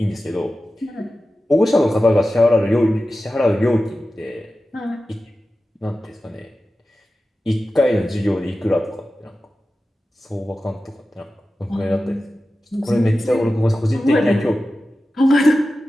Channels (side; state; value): both; normal; correlation 0.94